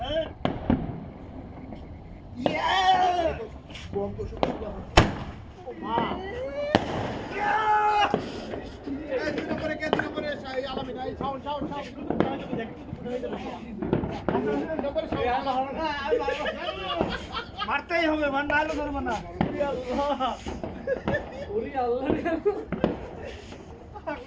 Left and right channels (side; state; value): both; identical; correlation 1.00